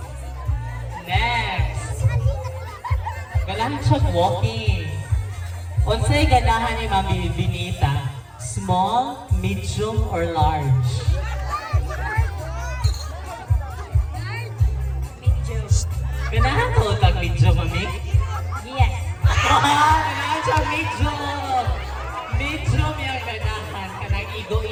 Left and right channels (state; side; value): identical; both; correlation 1.00